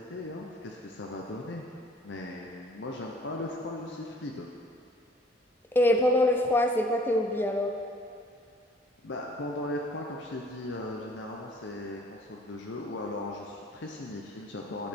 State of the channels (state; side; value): normal; both; correlation 0.54